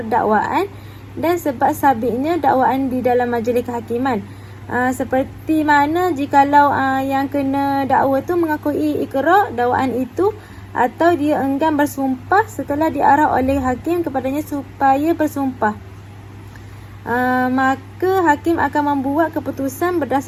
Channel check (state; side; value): identical; both; correlation 1.00